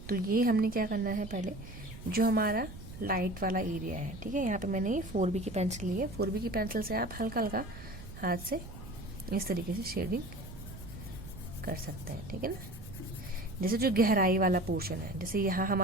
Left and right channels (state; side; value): noise; right; rumble, 14 dB below the sound